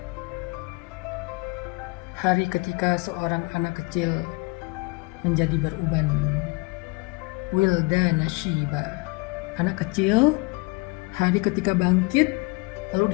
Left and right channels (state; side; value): quieter; right; 27.4 dB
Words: Hari ketika seorang anak kecil menjadi beruban. Wildana Shiba. Anak kecil hari ketika bangkit